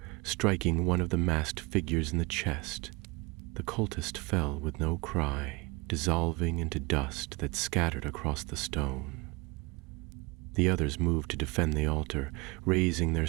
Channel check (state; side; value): quieter; left; 25.7 dB